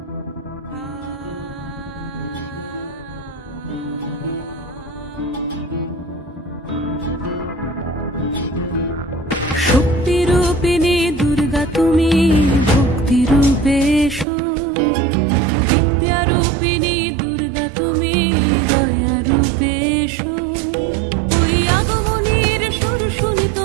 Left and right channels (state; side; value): drops out; left; at 14.2 s